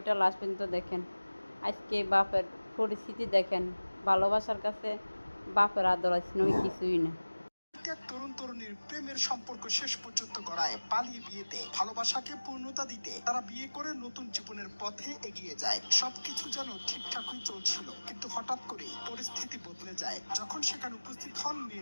লাস্ট পর্যন্ত দেখেন। আজকে বাপের পরিস্থিতি দেখেন। ভালোবাসার কাছে বাপের আদর আছে নয় কিছুই না। এক তরুণ তরুণীর প্রেমের সম্পর্ক শেষ পর্যন্ত গড়ায় পালিয়ে বিয়েতে। ভালোবাসাকে পূর্ণতা দিতে তারা বিয়ে করে নতুন জীবনের পথে এগিয়ে যায়। সবকিছু যেন ঠিকঠাকই চলছিল, কিন্তু হঠাৎ করে পরিস্থিতি বদলে যায় যখন সেখানে উপস্থিত হন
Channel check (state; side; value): inverted; both; correlation -1.00